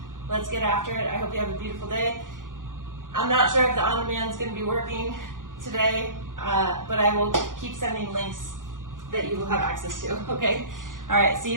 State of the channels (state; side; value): late; left; 0.89 ms